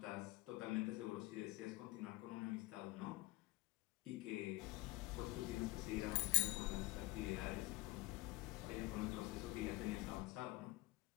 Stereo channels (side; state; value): right; quieter; 20.8 dB